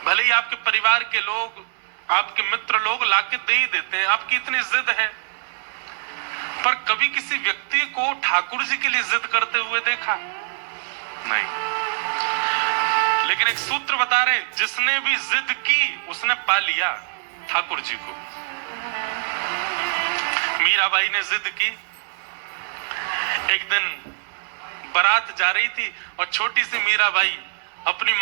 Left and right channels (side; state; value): left; silent; digital silence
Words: भले ही आपके परिवार के लोग, आपके मित्र लोग लाके दे ही देते हैं, आपकी इतनी जिद है। पर कभी किसी व्यक्ति को ठाकुर जी के लिए जिद करते हुए देखा नहीं। लेकिन एक सूत्र बता रहे, जिसने भी जिद की उसने पा लिया ठाकुर जी को। मीराबाई ने जिद की। एक दिन बारात जा रही थी और छोटी सी मीराबाई अपनी